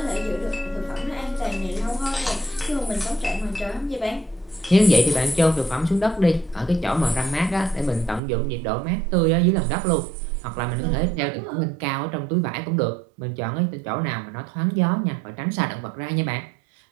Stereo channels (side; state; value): left; drops out; at 8.2 s